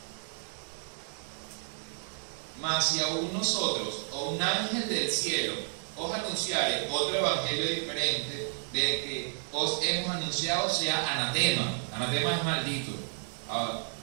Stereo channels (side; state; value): left; silent; digital silence